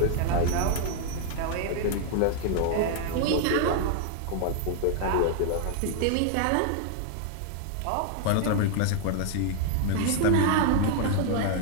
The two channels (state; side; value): different; both; correlation 0.00